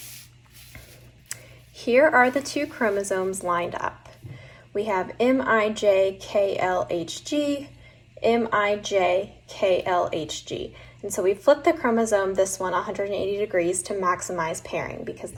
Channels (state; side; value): identical; both; correlation 1.00